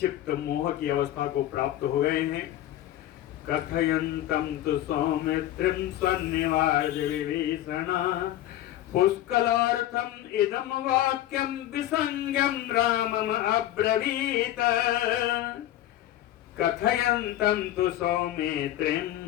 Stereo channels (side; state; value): right; quieter; 13.5 dB